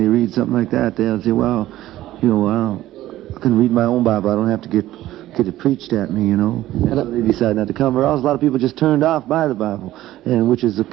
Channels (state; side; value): quieter; left; 14.7 dB